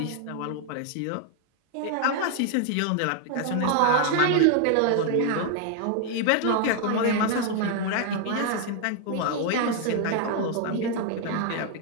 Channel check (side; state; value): both; different; correlation 0.00